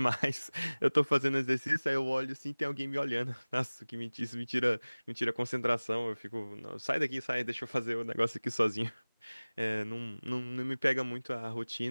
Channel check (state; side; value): inverted; both; correlation -1.00